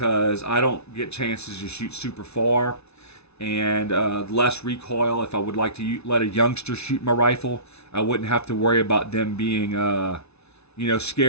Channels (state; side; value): late; right; 0.80 ms